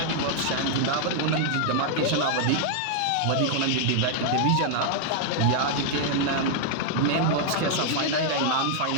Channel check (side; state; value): both; different; correlation 0.00